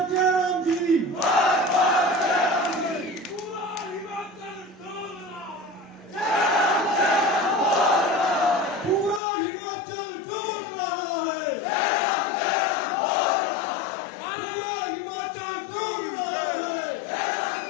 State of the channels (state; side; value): drops out; right; at 9.2 s